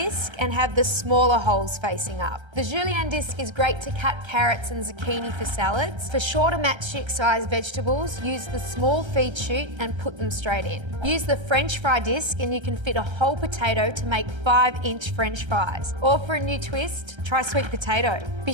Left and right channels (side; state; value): left; late; 1.3 ms